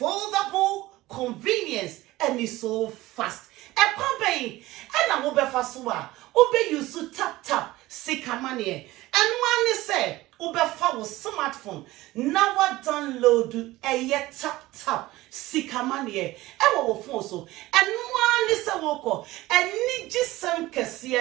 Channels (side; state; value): left; quieter; 18.0 dB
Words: convenience, and it's so fast. A company and I will be fastwa. Obe you to tap sika money. And one is say Obe follow smartphone. Now I download a tap sika money. E wo phone so. And one is a woko. And need just some kasi